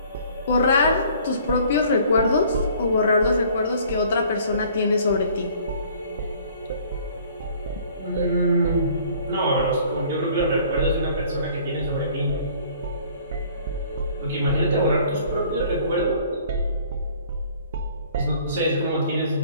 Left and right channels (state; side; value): inverted; both; correlation -0.55